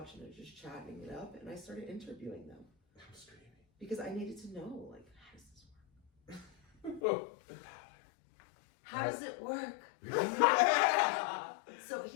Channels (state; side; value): drops out; right; at 7.0 s